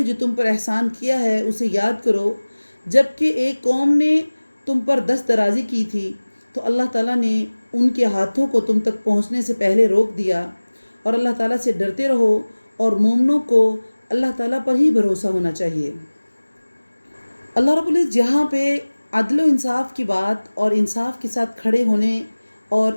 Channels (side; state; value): both; inverted; correlation -1.00